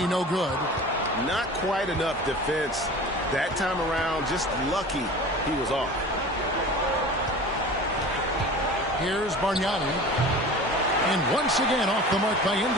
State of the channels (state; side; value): normal; both; correlation 0.38